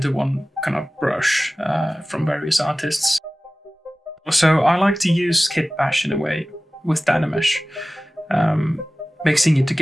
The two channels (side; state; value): both; normal; correlation 0.97